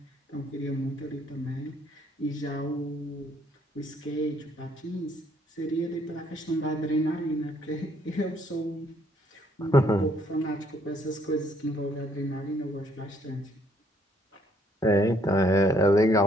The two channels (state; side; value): normal; both; correlation 0.66